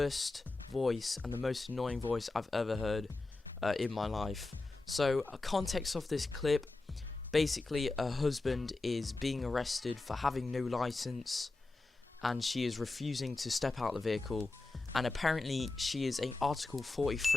voice and the most annoying voice I've ever heard in my life. So, context of this clip, basically a husband is being arrested for having no license, and she is refusing to step out of the vehicle, and apparently she is an Article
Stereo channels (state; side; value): quieter; right; 3.3 dB